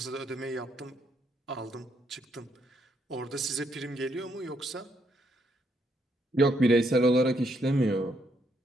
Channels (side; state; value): both; normal; correlation 0.74